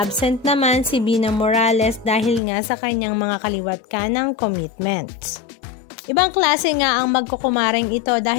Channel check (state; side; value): drops out; right; at 2.4 s